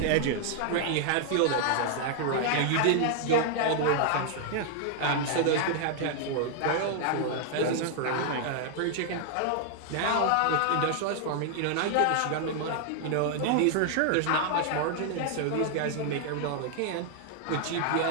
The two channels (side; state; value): both; different; correlation 0.00